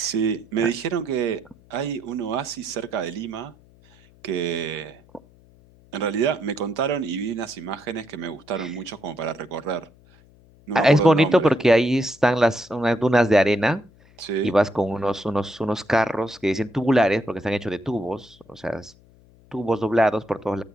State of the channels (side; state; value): left; noise; hum, 28 dB below the sound